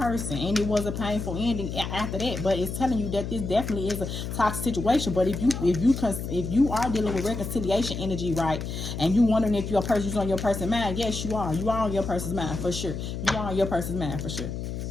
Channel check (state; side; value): noise; left; hum, 5 dB below the sound